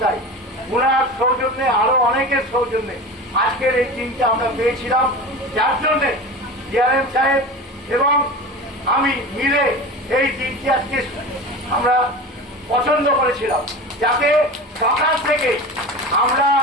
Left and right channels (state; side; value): normal; both; correlation 0.31